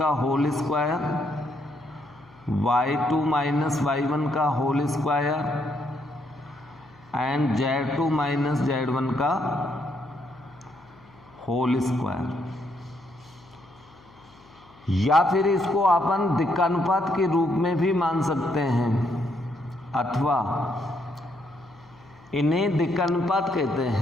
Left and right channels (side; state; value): left; noise; hum, 27 dB below the sound